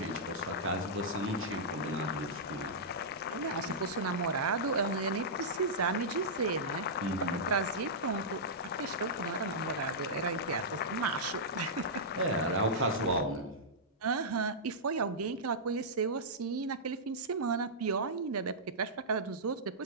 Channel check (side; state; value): both; normal; correlation -0.13